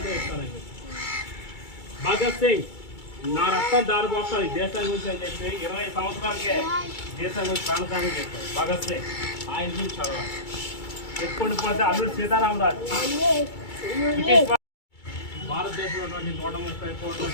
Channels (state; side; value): late; right; 2.3 ms